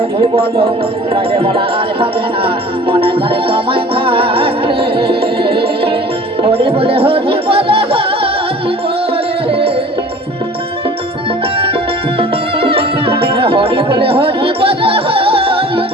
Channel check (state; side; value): normal; both; correlation 0.45